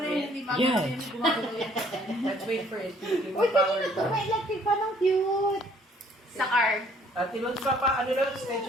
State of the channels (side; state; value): both; normal; correlation 0.61